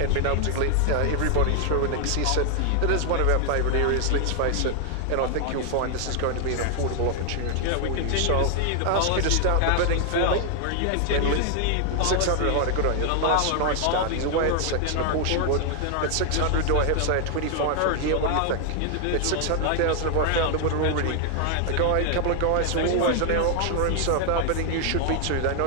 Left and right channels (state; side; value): different; both; correlation 0.00